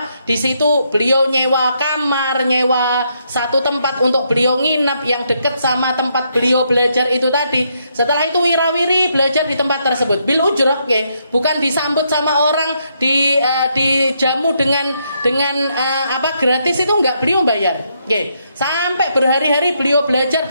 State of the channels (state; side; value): inverted; both; correlation -0.76